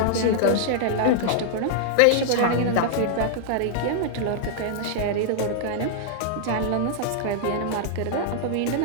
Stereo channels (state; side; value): different; both; correlation -0.01